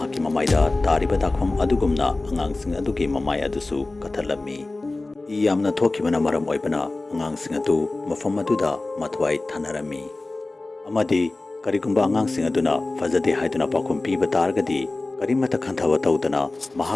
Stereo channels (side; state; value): right; quieter; 3.1 dB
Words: ममाइदा तारिबा दाखफम अदुगुमना अंगांग सिंग अदुगी ममाइ अदुसु कथलमी इ यामना थोखिबना मरम ओइबना अंगांग सिंग अदु मफम अदुदा मथवाइ थानरमी अमादी करिगुंबा अंगांग सिंग अदुना फजदे हाइदुना पाखुम पीबा तारगदी करिमता खंथवा तौदना